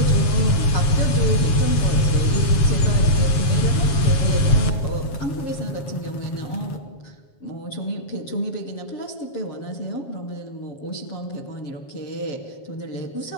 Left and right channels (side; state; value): right; late; 7.3 ms